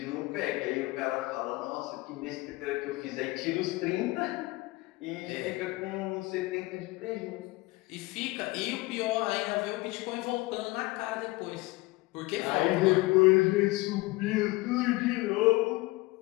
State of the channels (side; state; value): right; quieter; 21.8 dB